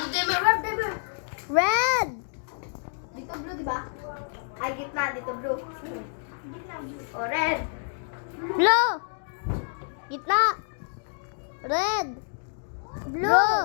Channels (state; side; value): silent; right; digital silence